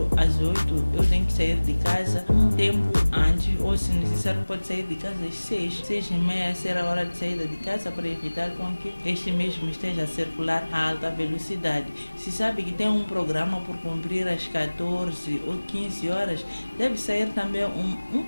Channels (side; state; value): both; inverted; correlation -1.00